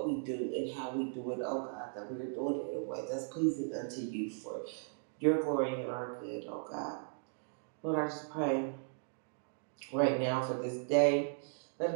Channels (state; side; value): silent; left; digital silence